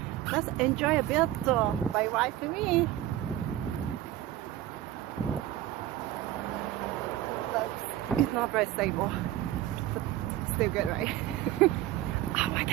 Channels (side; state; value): left; quieter; 13.5 dB